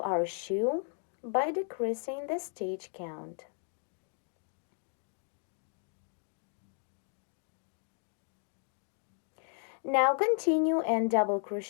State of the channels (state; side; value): silent; right; 54 dB below the other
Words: shoe by decreasing the stitch count. Now continue and double